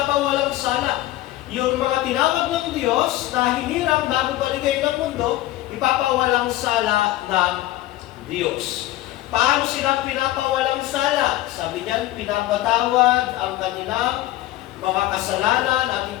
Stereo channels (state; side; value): quieter; right; 15.7 dB